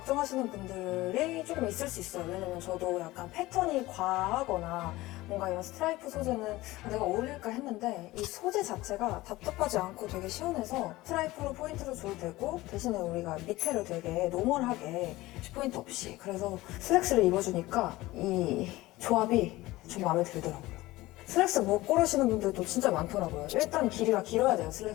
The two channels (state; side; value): quieter; right; 18.6 dB